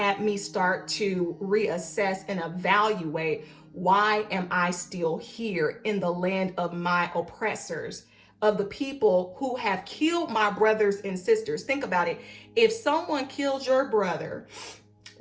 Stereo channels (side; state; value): both; identical; correlation 1.00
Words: me start to reassess and evaluate, why am I still here in the land of my oppressors, of the people who have killed my brothers and sisters? Think about it. If someone killed your brother,